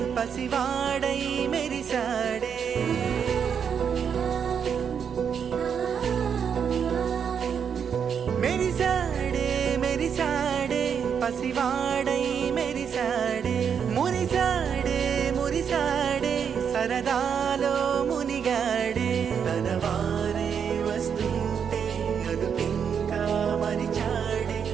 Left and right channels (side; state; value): left; quieter; 7.3 dB